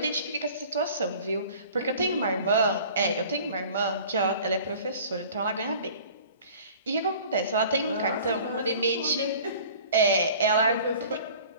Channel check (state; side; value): inverted; both; correlation -0.46